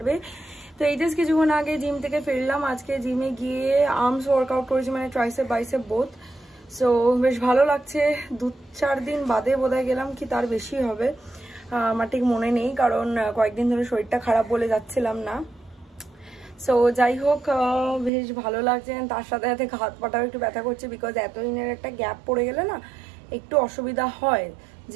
তো এই জাস্ট কিছুক্ষণ আগে জিম থেকে ফিরলাম। আজকে জিমে গিয়ে আর্মস ওয়ার্কআউট করেছি, মানে ট্রাইসেপ বাইসেপ বোথ। সো বেশ ভালো লাগছে। 2-4 দিন বাদে বোধহয় গেলাম, কি তার বেশি হবে আমার ঠিক মনে নেই, কারণ কয়েকদিন ধরে শরীরটা খারাপ বলে যাচ্ছিলাম না। সো যাই হোক, বেশ ভালো লাগছে। তার সাথে সাথে হাত পাটাও একটু ব্যথা করছে, বিকজ এতদিনের একটা গ্যাপ পড়ে গেলে না একটু অসুবিধা হয়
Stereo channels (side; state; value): left; drops out; at 18.1 s